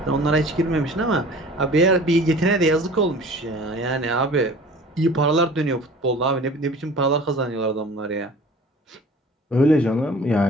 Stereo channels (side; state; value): both; normal; correlation 0.45